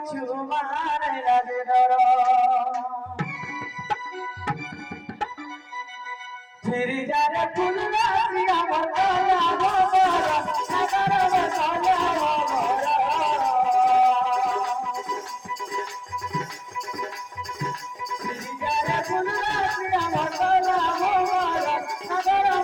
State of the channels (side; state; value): both; identical; correlation 1.00